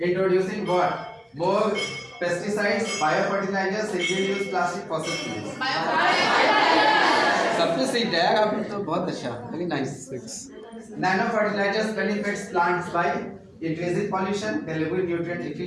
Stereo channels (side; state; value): both; identical; correlation 1.00